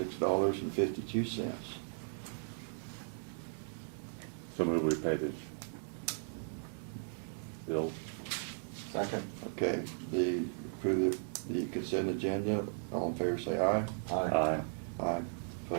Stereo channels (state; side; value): silent; left; digital silence